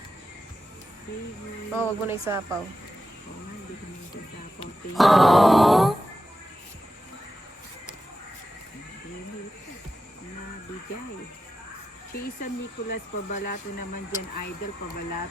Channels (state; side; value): normal; both; correlation 0.90